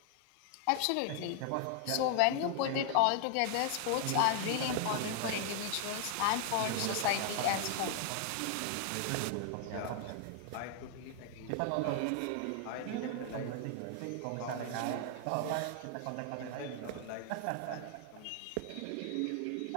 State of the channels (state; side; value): different; both; correlation 0.00